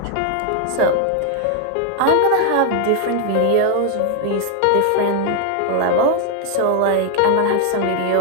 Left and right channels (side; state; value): both; different; correlation 0.00